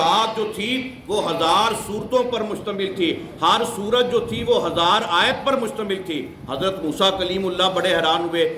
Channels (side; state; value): both; identical; correlation 1.00